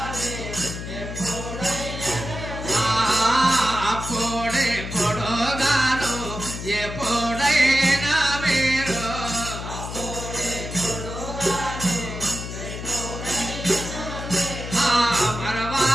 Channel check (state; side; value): noise; left; hum, 8 dB below the sound